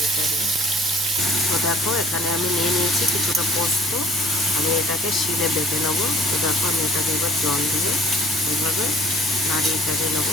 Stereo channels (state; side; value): normal; both; correlation 0.53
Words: চাড়িয়ে। তো দেখো এখানে আমি নিয়ে নিয়েছি কিছুটা পোস্ত, আমি এটাকে শিলে বেটে নেবো। তো দেখো আমি এটাকে এবার জল দিয়ে এইভাবে নাড়িয়ে চাড়িয়ে